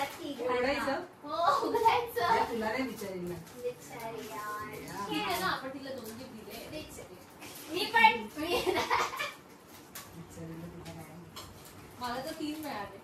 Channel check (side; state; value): both; identical; correlation 1.00